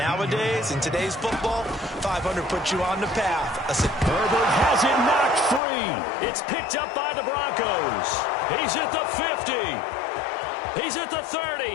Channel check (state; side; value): drops out; right; at 5.6 s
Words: in today's football, 500 puts you on the path. Herbert has it knocked free. It's picked up by the Broncos. He's at the 50. He's at the